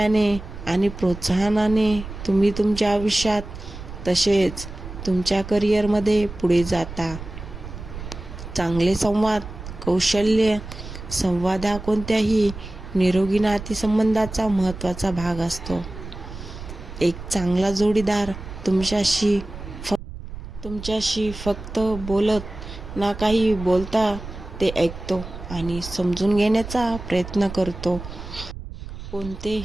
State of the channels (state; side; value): noise; right; rumble, 11 dB below the sound